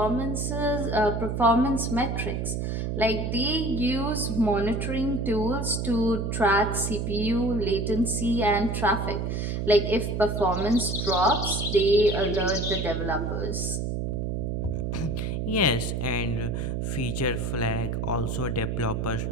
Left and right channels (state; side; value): noise; right; hum, 2 dB below the sound